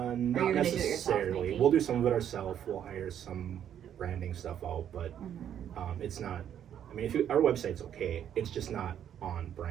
you're gonna do it yourself, necessarily. maybe? We'll do some of it ourselves. We'll hire some branding stuff out, but it's not. I mean, our website's okay. It's just not on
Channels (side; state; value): left; quieter; 9.7 dB